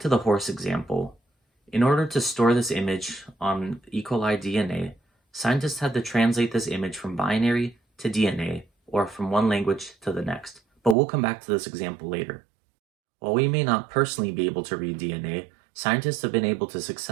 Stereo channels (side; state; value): left; drops out; at 11.0 s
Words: to the horse example. In order to store this image on E. coli DNA, scientists had to translate this image from binary to DNA, or from one language to the next. But we'll come back to this example later. While we may not personally be able to read DNA, scientists have been able to